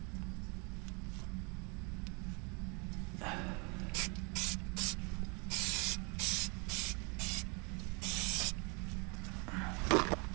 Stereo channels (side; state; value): left; quieter; 32.3 dB